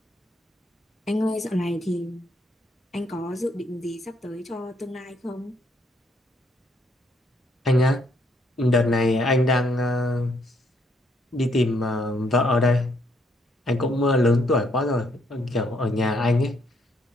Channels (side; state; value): both; normal; correlation 0.71